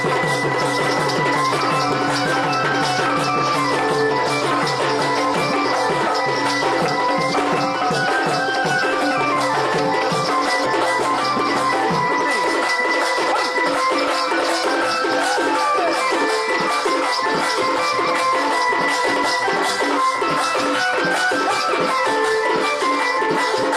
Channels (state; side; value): identical; both; correlation 1.00